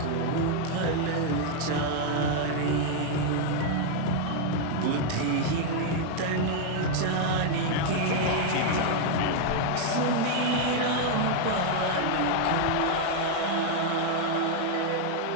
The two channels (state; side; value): different; both; correlation 0.00